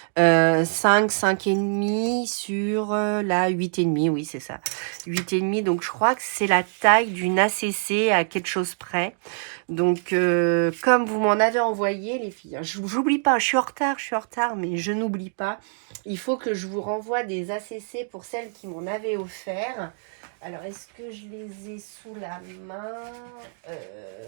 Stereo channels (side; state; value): left; silent; digital silence